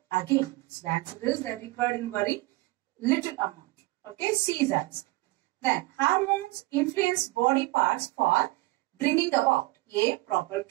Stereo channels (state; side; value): quieter; left; 21.5 dB